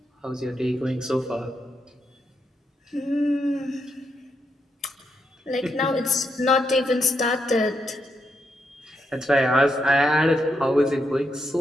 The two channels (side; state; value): both; normal; correlation 0.81